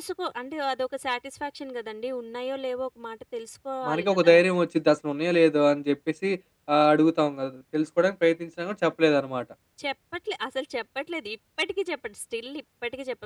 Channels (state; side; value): identical; both; correlation 1.00